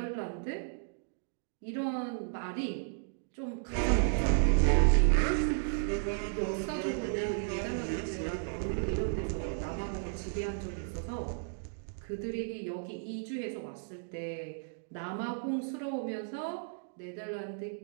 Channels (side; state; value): left; silent; digital silence